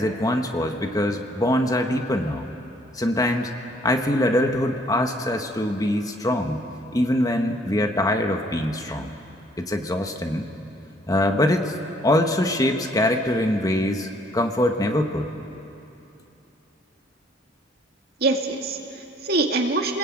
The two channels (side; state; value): both; normal; correlation 0.62